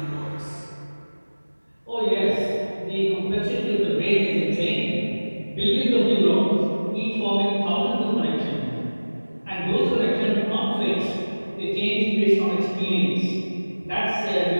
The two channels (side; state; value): both; inverted; correlation -1.00